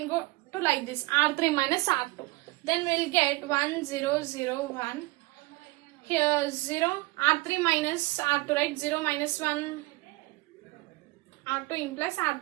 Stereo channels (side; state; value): left; quieter; 22.1 dB